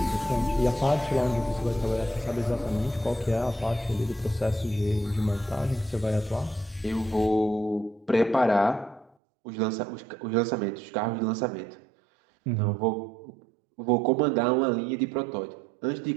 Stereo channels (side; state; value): left; drops out; at 9.1 s